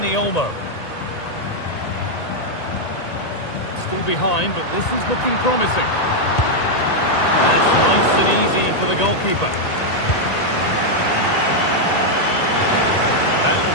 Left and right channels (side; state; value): right; late; 1.8 ms